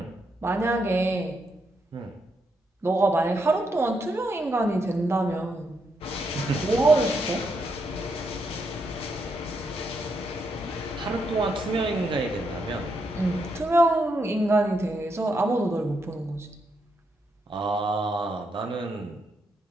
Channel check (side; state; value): both; normal; correlation 0.80